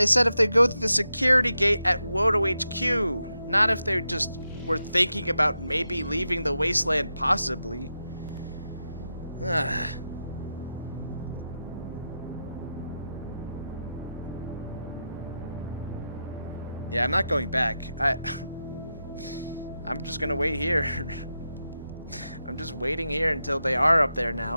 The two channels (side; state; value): both; inverted; correlation -0.88